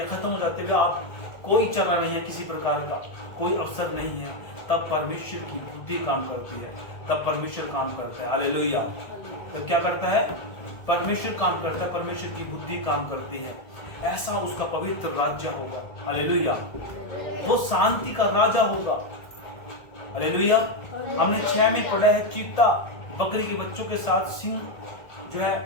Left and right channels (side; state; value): right; late; 1.7 ms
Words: खत्म हो जाती है, आप कोई चला नहीं है, किसी प्रकार का कोई अवसर नहीं है, तब परमेश्वर की बुद्धि काम करती है, तब परमेश्वर काम करता है। हालेलुया। तो क्या करता है? परमेश्वर काम करता है, परमेश्वर की बुद्धि काम करती है। ऐसा उसका पवित्र राज्य होगा। हालेलुया। वो शांति का राजा होगा। हालेलुया। हमने 6 में पढ़ा है, चीता बकरी के बच्चों के साथ, सिंह जो